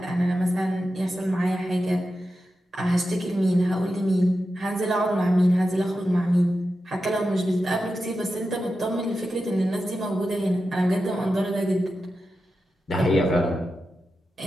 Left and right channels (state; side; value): normal; both; correlation 0.91